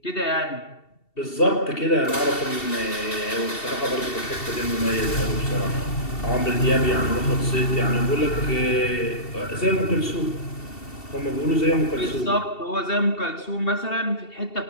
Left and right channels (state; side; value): late; right; 2.7 ms